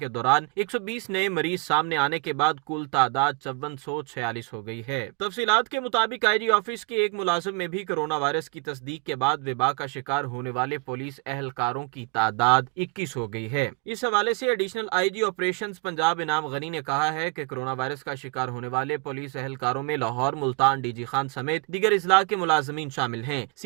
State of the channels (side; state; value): left; quieter; 32.4 dB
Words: دوران 120 نئے مریض سامنے آنے کے بعد کل تعداد 5446 ہو گئی ہے۔ تفصیلات کے مطابق آئی جی آفس کے ایک ملازم میں بھی کورونا وائرس کی تصدیق کے بعد وبا کا شکار ہونے والے پولیس اہلکاروں کی تعداد 21 ہو گئی ہے۔ اس حوالے سے additional I G operations Punjab Inam Ghani نے کہا ہے کہ کورونا وائرس کا شکار ہونے والے پولیس اہلکاروں میں لاہور، ملتان، ڈی جی خان سمیت دیگر اضلاع کے ملازمین شامل ہیں۔